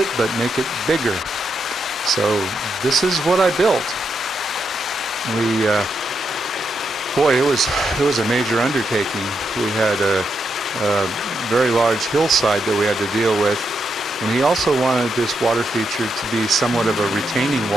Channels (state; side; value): normal; both; correlation 0.82